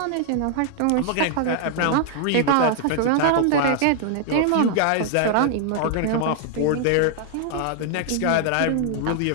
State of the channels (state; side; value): different; both; correlation 0.00